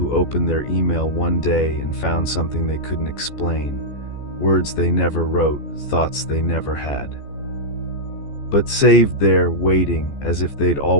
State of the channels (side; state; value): right; late; 14 ms